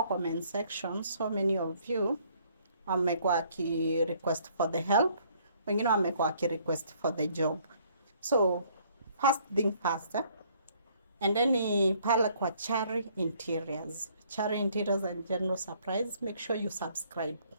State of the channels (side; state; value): both; inverted; correlation -0.63